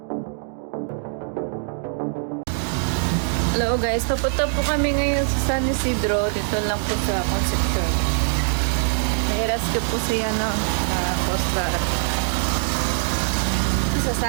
Hello guys, papunta po kami ngayon sa San Isidro. Dito lang po sa Concepcion. Nai-rescue po siya Coast Guard.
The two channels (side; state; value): left; silent; 64 dB below the other